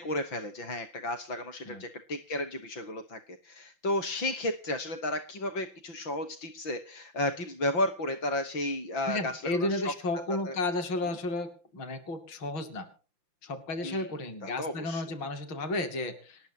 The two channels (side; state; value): right; late; 5.8 ms